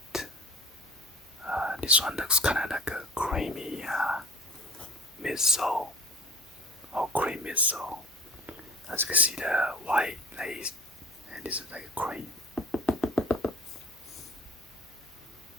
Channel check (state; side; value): normal; both; correlation 0.45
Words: This one looks kind of like a creamy midsole, or cream midsole. As you can see, the white lace, and this is like a cream.